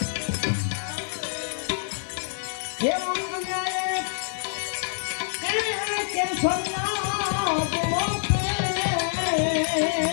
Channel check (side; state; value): right; silent; digital silence